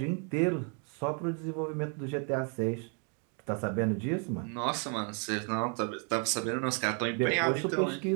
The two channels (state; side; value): quieter; left; 39.5 dB